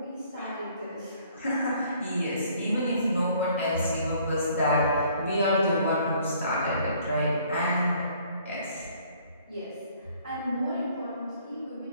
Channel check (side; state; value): both; inverted; correlation -0.60